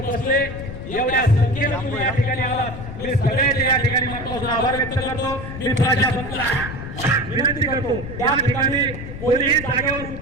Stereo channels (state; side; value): noise; left; rumble, 9 dB below the sound